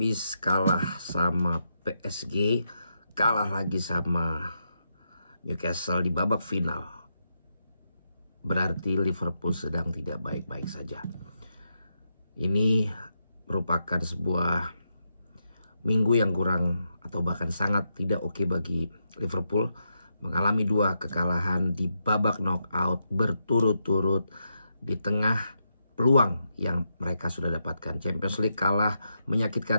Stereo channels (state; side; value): inverted; both; correlation -0.83